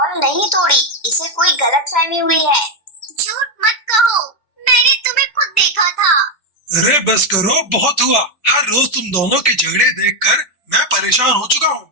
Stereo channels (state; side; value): late; right; 2.1 ms